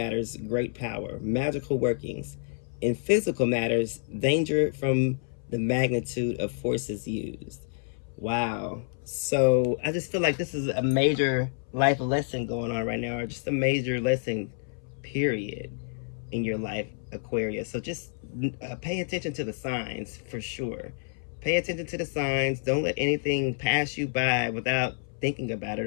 great power, magical workings. In physical matters, danger from the magnitude of forces used. Wow. So I just feel like this is a major life lesson going on right now, or just a major lesson, period, in your life, Aquarius. So just pay attention to the signs for sure. Pay attention to the signs. Don't let anything pass you by without thinking about it,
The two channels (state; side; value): silent; right; 59 dB below the other